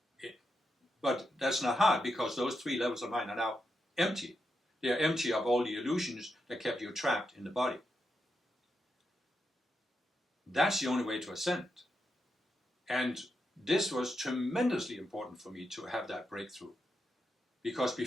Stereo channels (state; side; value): normal; both; correlation 0.85